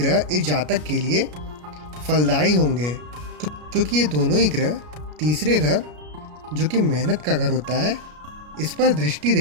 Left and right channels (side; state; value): left; late; 33 ms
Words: इस जातक के लिए फलदायी होंगे, क्योंकि ये दोनों ही ग्रह तीसरे घर, जो कि मेहनत का घर होता है, इस पर दृष्टि